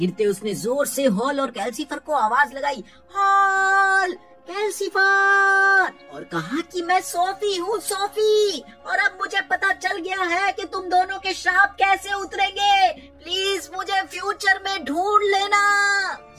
उसने जोर से हॉल और कैल्सीफर को आवाज लगाई, हॉल, कैल्सीफर, और कहा कि मैं सोफी हूँ सोफी, और अब मुझे पता चल गया है कि तुम दोनों के श्राप कैसे उतरेंगे। प्लीज मुझे फ्यूचर में ढूंढ लेना।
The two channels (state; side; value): identical; both; correlation 1.00